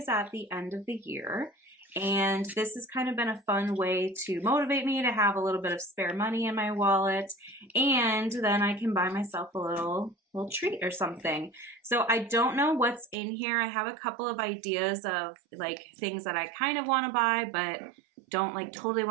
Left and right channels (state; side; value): drops out; left; at 13.2 s